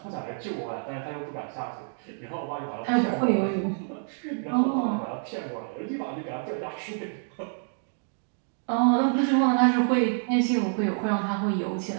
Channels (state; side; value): silent; left; 59 dB below the other